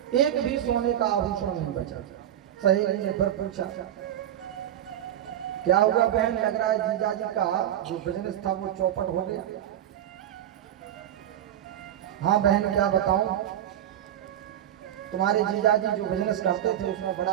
एक भी सोने का आभूषण नहीं बचा। सहेली ने फिर पूछा, क्या हुआ बहन, लग रहा है जीजा जी का जो बिजनेस था वो चौपट हो गया। हाँ बहन क्या बताऊं, तुम्हारे जीजा जी जो बिजनेस करते थे उसमें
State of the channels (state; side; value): quieter; left; 11.2 dB